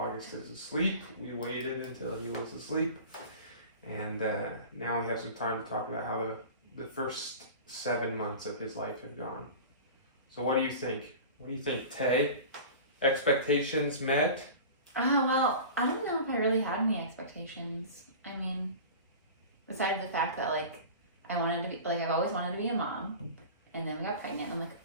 is asleep. We waited until he was asleep. And now we have some time to talk about how the first 7 months of his life have gone. So what do you think? What do you think, Tay? Expectations met? Well, I don't know if I really had any expectations. I mean, besides the fact that, I wanted to be, I've always wanted to be a mom. And then we got pregnant, and I'm like,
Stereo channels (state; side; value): inverted; both; correlation -0.35